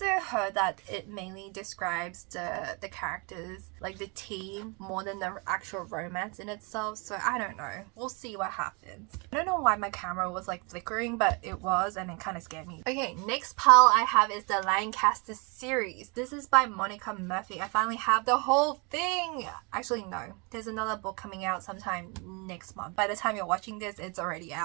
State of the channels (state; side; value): quieter; left; 31.3 dB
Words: heard that it mainly describes the characters, like the team, more than the actual romance in itself, so I don't know. We'll see what happens. I don't know why my camera was like flickering, but it was, and it kind of scared me. Okay, next pile I have is the Lancaster series. This is by Monica Murphy. I finally have the whole thing. Actually, no. There's another book coming out sometime next month. By the time you're watching this, it's already